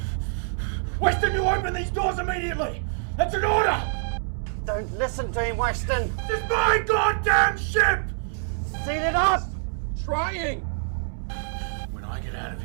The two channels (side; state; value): left; silent; 61 dB below the other